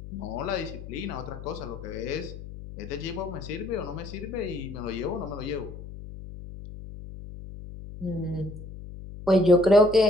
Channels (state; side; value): noise; left; hum, 12 dB below the sound